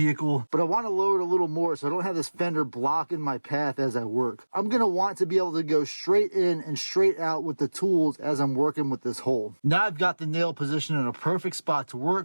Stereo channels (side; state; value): both; inverted; correlation -1.00